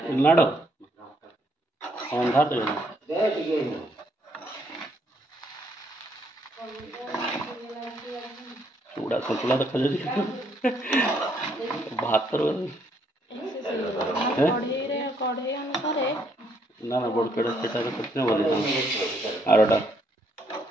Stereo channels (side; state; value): both; normal; correlation 0.71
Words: लाडो अंधा दे चूड़ा सतुला देखा जाए भात कढ़ई अनुसार ना ना बड़ कड़े सेटा कितने बोले आरोटा